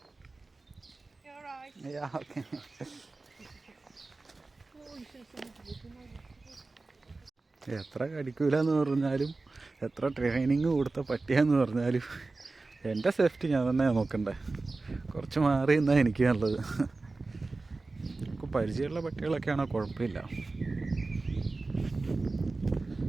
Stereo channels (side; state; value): left; quieter; 3.5 dB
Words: You're right. Yeah, okay. എത്ര കടിക്കൂല എന്ന് പറഞ്ഞാലും എത്ര ട്രെയിനിങ് കൊടുത്ത പട്ടിയാന്ന് പറഞ്ഞാലും എൻ്റെ സേഫ്റ്റി ഞാൻ തന്നെയാണ് നോക്കണ്ടേ. കുറച്ച് മാറി നിന്നാൽ എനിക്ക് നല്ലത്. നമുക്ക് പരിചയമുള്ള പട്ടികളൊക്കെ ആണോ കുഴപ്പമില്ല.